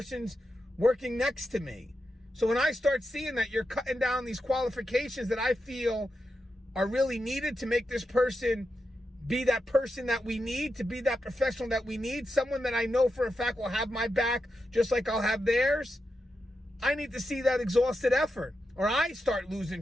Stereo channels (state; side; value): normal; both; correlation 0.87